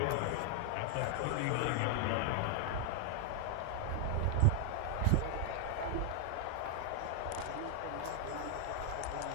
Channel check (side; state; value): both; different; correlation 0.00